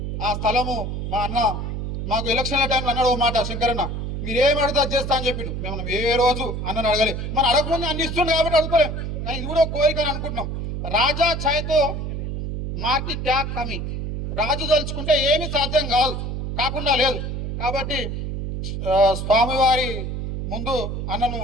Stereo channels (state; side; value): noise; right; hum, 4 dB below the sound